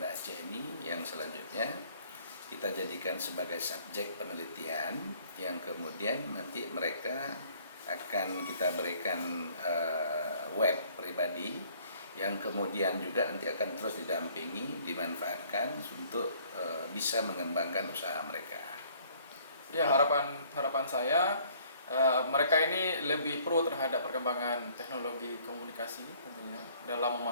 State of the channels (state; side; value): inverted; both; correlation -0.59